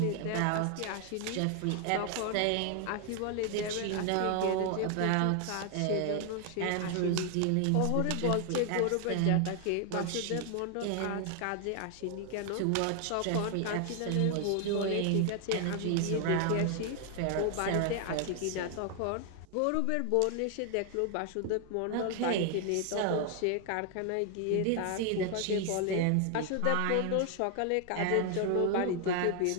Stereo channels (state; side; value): different; both; correlation 0.00